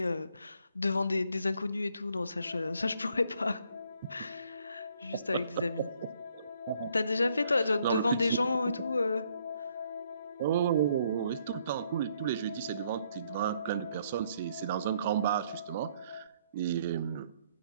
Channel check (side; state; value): both; inverted; correlation -0.68